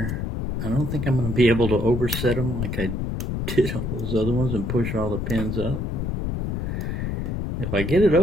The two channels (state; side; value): noise; left; rumble, 2 dB below the sound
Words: I don't think I'm going to be able to overset him like I did all those other ones and push all the pins up. If I get it